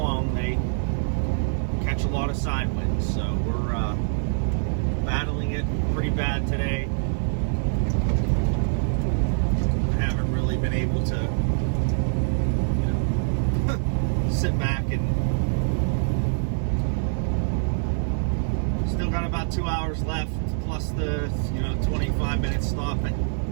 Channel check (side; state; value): left; silent; digital silence